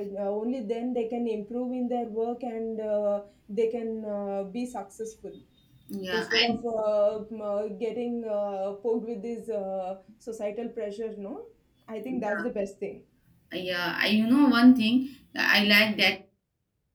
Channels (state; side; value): identical; both; correlation 1.00